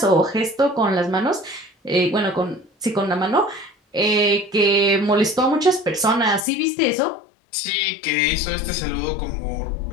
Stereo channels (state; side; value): drops out; right; at 6.4 s